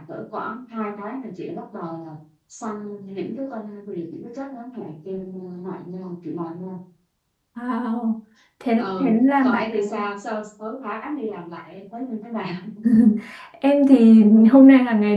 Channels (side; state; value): both; identical; correlation 1.00